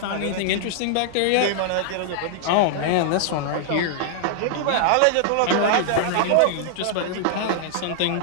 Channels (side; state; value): both; different; correlation -0.01